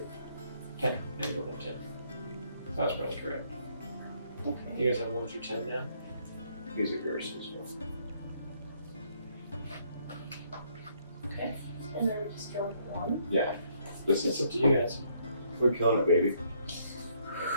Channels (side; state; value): both; inverted; correlation -0.69